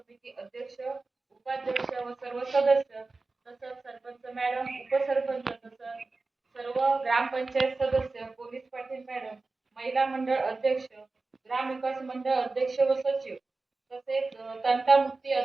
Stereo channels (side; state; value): left; quieter; 3.6 dB